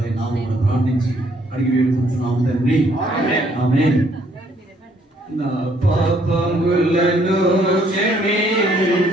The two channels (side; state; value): both; normal; correlation 0.66